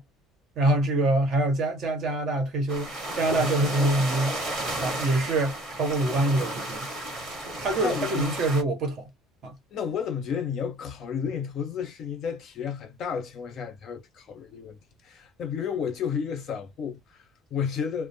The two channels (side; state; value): both; normal; correlation 0.50